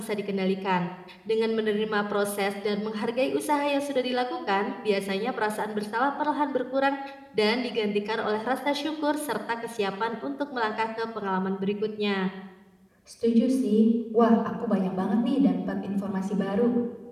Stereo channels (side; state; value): both; identical; correlation 1.00